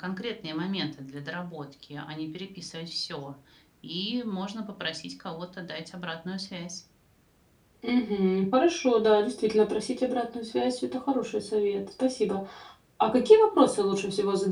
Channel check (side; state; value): both; identical; correlation 1.00